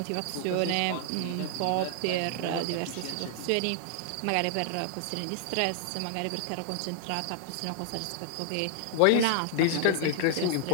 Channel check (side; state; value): both; different; correlation -0.01